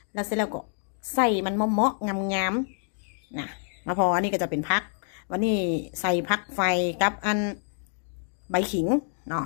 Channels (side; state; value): right; silent; digital silence